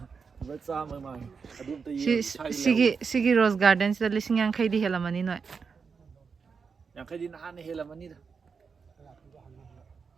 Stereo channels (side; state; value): left; quieter; 5.5 dB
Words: Batsa mang. Adum to Sigi Rose Garden sida lising yang khay di helamani no. Yang kay di nahan helamani da.